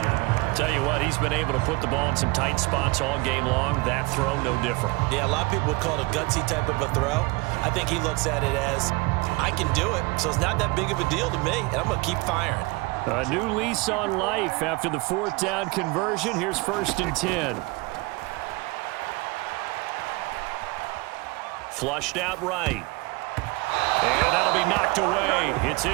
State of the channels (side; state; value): left; quieter; 24.6 dB